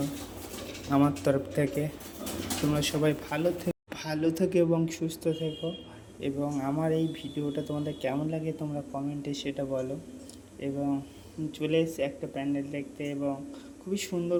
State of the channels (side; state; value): both; identical; correlation 1.00